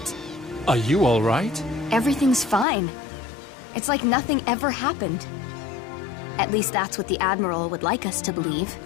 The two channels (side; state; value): right; drops out; at 2.7 s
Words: Are you all right? Everything's fine. It's like nothing ever happened. At least that's what the Admiral would like us to believe.